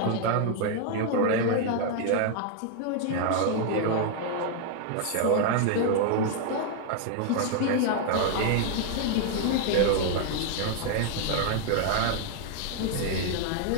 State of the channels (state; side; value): different; both; correlation 0.00